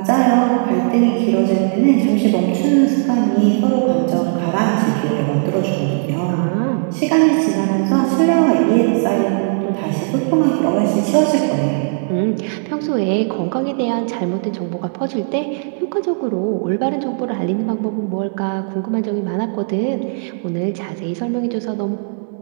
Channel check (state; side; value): silent; left; digital silence